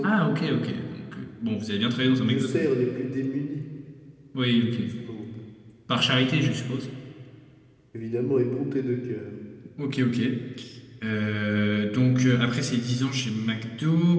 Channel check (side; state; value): both; identical; correlation 1.00